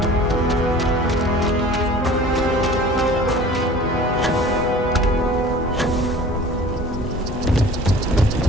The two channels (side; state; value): both; normal; correlation 0.44